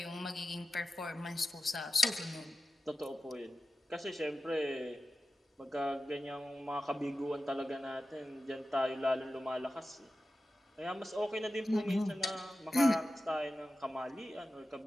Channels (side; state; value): both; normal; correlation 0.94